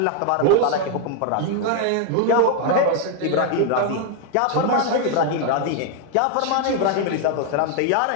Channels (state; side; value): different; both; correlation 0.01